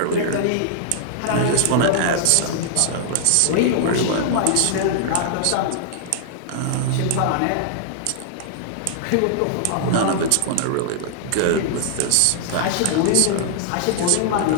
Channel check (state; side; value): different; both; correlation -0.01